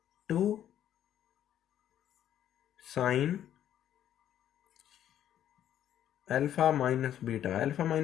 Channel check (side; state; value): right; quieter; 10.9 dB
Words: 2 sine alpha minus beta. Alpha